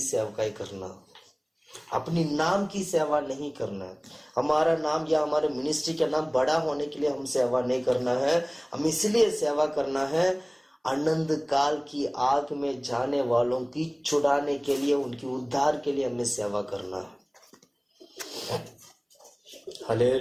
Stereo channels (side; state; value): both; identical; correlation 1.00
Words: सेवकाई करना, अपनी नाम की सेवा नहीं करना है। हमारा नाम या हमारे मिनिस्ट्री का नाम बड़ा होने के लिए हम सेवा नहीं करना है, हम इसलिए सेवा करना है अनंत काल की आग में जाने वालों की छुड़ाने के लिए, उनकी उद्धार के लिए हमें सेवा करना है।